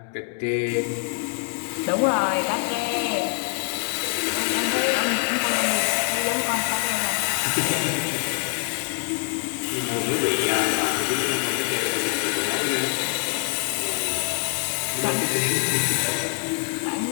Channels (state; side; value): quieter; right; 38.5 dB